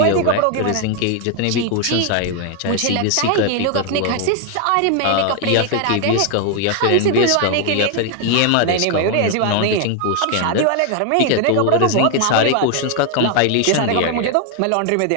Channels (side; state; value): both; different; correlation 0.00